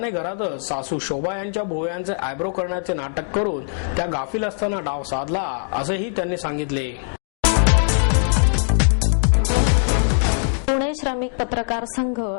घरातच सासू शोभा यांच्या भोवयांचे आयब्रो करण्याचे नाटक करून त्या गाफील असताना डाव साधला असेही त्यांनी सांगितले। पुणे श्रमिक पत्रकार संघ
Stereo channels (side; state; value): right; silent; digital silence